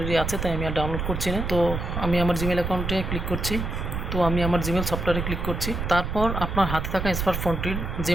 আছে, তাই আমি আর ডাউনলোড করছি না। তো আমি আমার জিমেল অ্যাকাউন্টে ক্লিক করছি। তো আমি আমার জিমেল সফটওয়্যারে ক্লিক করছি। তারপর আপনার হাতে থাকা স্মার্টফোনটির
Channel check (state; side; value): noise; right; rumble, 3 dB below the sound